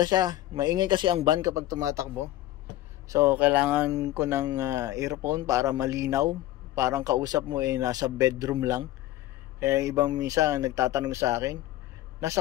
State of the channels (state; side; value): quieter; right; 15.0 dB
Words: siya. Maingay kasi ang van kapag tumatakbo. So kailangan ko ng earphone para malinaw. Parang kausap mo nasa bedroom lang. Kaya ibang minsan nagtatanong sa akin, nasa